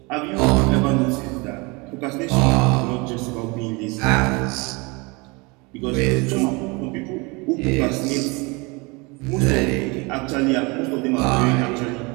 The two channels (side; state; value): left; quieter; 27.3 dB